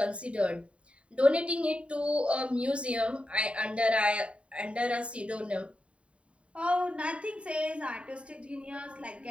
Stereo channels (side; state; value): left; late; 0.061 ms